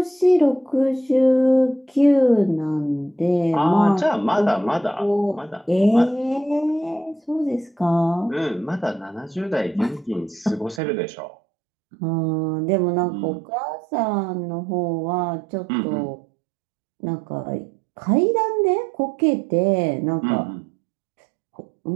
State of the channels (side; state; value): left; drops out; at 10.8 s